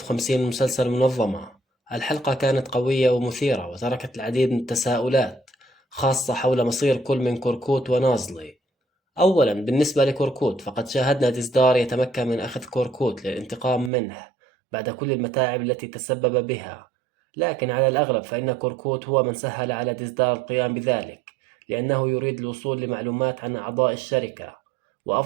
من مسلسل منظمة. الحلقة كانت قوية ومثيرة وتركت العديد من التساؤلات، خاصة حول مصير كل من كوركوت ونازلي. أولا، بالنسبة لكوركوت فقد شاهدنا ديزدار يتمكن من أخذ كوركوت للانتقام منه بعد كل المتاعب التي تسبب بها، لكن على الأغلب فإن كوركوت هو من سهل على ديزدار القيام بذلك، لأنه يريد الوصول لمعلومات عن أعضاء الشركة،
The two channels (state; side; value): drops out; left; at 13.9 s